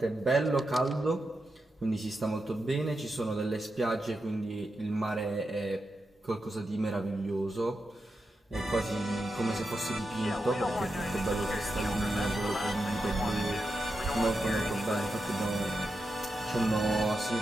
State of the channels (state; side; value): normal; both; correlation 0.88